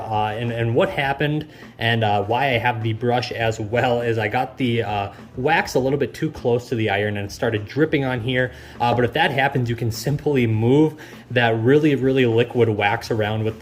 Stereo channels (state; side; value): identical; both; correlation 1.00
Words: what happened and why I have the brush as well is I got the wax a little bit too close to the iron and it started dripping on here. But if that happens, you can simply move that really liquid wax around with